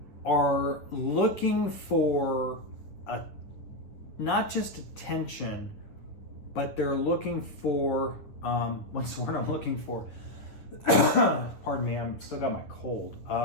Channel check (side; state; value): right; late; 9.6 ms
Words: are looking for not just attention, but they're looking for, what's the word I'm looking for? Pardon me, I'm still got my cold.